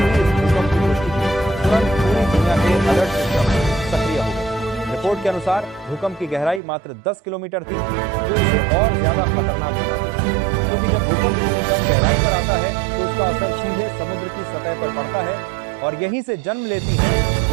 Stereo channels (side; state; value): left; drops out; at 6.6 s